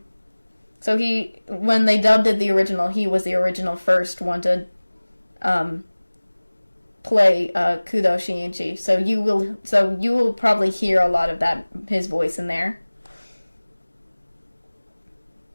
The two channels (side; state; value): both; inverted; correlation -1.00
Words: So when they dubbed it the original, he was the original first one to um, play Kudo Shinji. So you will probably hear a lot of that his voice in there.